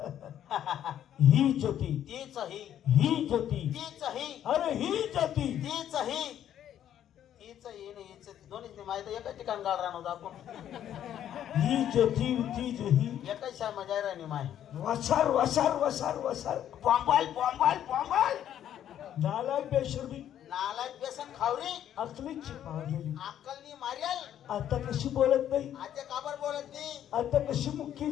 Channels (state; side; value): quieter; right; 10.6 dB